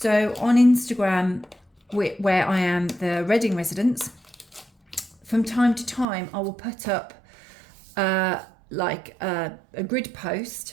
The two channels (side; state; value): left; drops out; at 6.1 s